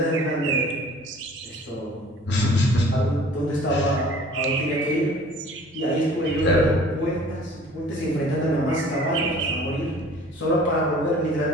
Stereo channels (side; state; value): both; normal; correlation 0.49